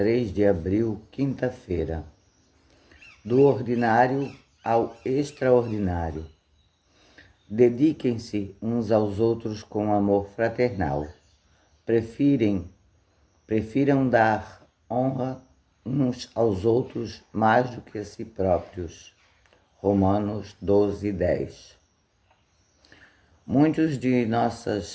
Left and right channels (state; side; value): identical; both; correlation 1.00